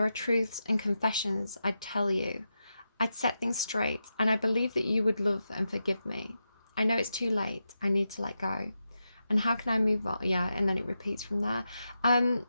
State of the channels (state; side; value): inverted; both; correlation -0.88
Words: are truths and confessions I'd tell you. I'd set things straight, and I believe that you would love and forgive me. I know it's too late. I need to let go. And how can I move on? Yeah, and then it repeats from there.